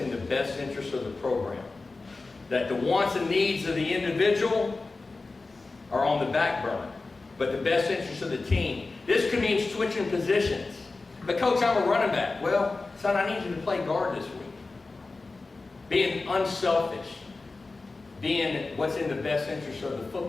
the best interest of the program. That the wants and needs of the individual are on the back burner, but the best interest of the team. This could mean switching positions. But coach, I'm a running back. Well, son, I need you to play guard this week. Being unselfish. Being what's in the best interest of the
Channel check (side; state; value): right; quieter; 3.6 dB